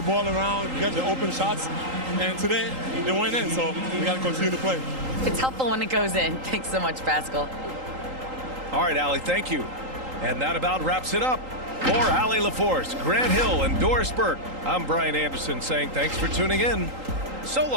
ball around, get the open shots. And today, they went in, so we got to continue to play. It's helpful when it goes in. Thanks so much, Pascal. All right, Allie, thank you. And that about wraps it up. For Allie LaForce, Grant Hill, and Doris Burke, I'm Brian Anderson saying thanks for tuning in. So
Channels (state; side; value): late; left; 3.8 ms